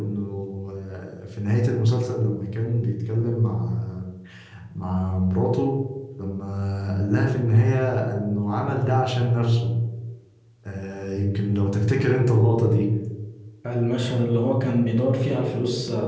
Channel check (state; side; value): identical; both; correlation 1.00